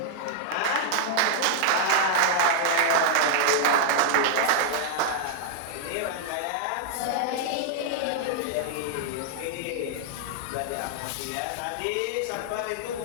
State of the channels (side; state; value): both; different; correlation -0.01